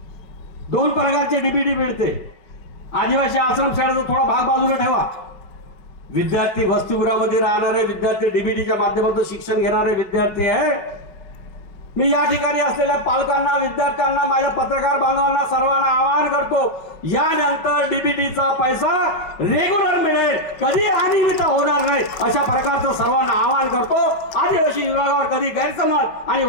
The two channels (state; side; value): late; right; 5.4 ms